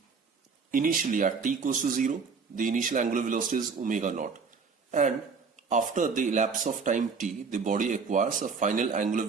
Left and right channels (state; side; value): quieter; left; 5.2 dB